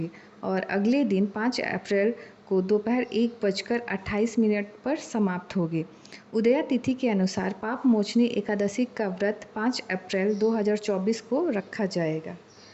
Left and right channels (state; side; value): identical; both; correlation 1.00